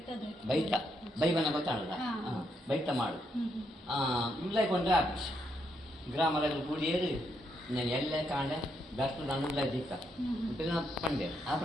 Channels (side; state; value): both; normal; correlation 0.77